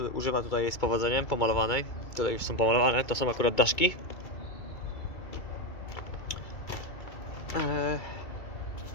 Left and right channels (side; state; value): right; late; 2.2 ms